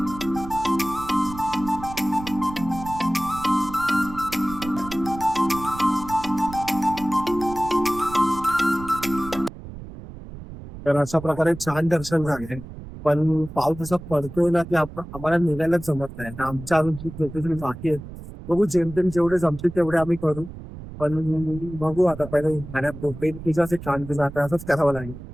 तर अशा प्रकारे छान दर्शन झाले. पण पाऊस असा पडतोय ना की आम्हाला निघायलाच जमत नाही. तर आमच्या अजून खूप लोकेशन बाकी आहेत. बघू, जेमतेम जेवढे जमतील तेवढे आम्ही करू. पण बघू आता, पहिले खाण्यात तुझं असे छान तुझं आता असंच करावं लागेल.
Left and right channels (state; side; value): noise; right; rumble, 13 dB below the sound